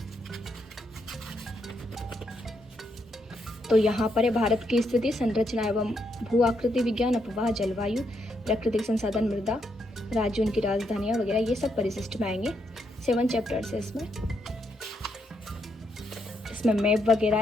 तो यहाँ पर है भारत की स्थिति, संरचना एवं भू आकृति विज्ञान, अपवाह, जलवायु, प्राकृतिक संसाधन, मृदा, राज्य, उनकी राजधानियाँ वगैरह, ये सब परिशिष्ट में आएंगे। 7 चैप्टर्स है इसमें मैप वगैरह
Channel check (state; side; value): normal; both; correlation 0.78